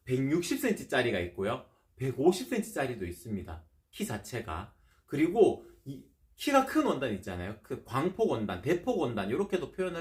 160cm 짜리가 있고요. 150cm 짜리도 있습니다. 키 자체가. 그리고 키가 큰 원단 있잖아요. 그 광폭 원단, 대폭 원단 이렇게도 표현을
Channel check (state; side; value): identical; both; correlation 1.00